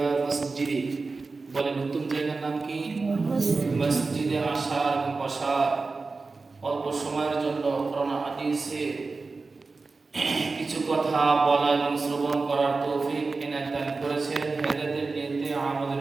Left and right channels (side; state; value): left; quieter; 4.0 dB